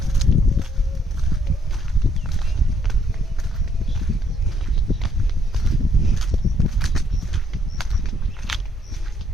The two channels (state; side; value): normal; both; correlation 0.69